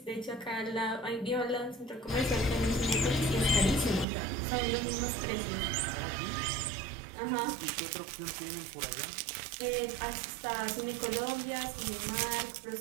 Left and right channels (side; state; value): left; drops out; at 4.0 s